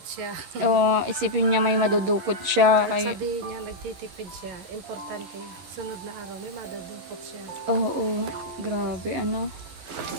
siya. O, isipin niya may madudukot siya. At sabihin niya, nagtitipid siya. Importante, sunod na araw, may madudukot siya. Oo, grabe,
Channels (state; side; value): late; left; 11 ms